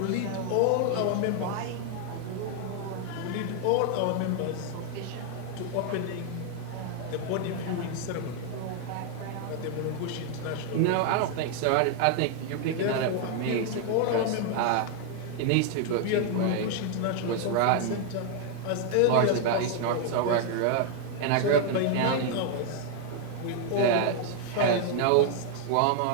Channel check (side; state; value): both; different; correlation 0.00